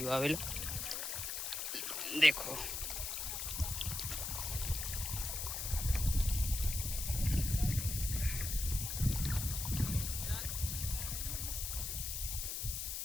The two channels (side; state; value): left; noise; hiss, 3 dB below the sound